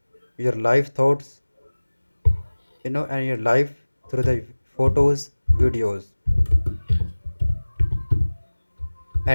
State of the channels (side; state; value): both; inverted; correlation -1.00